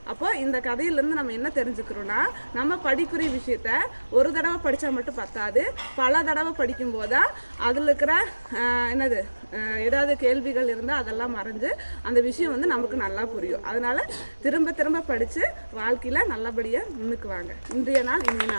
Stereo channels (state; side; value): inverted; both; correlation -1.00